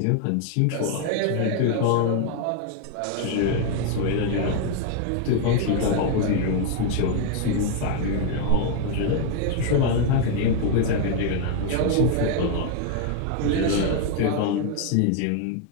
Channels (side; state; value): both; different; correlation 0.00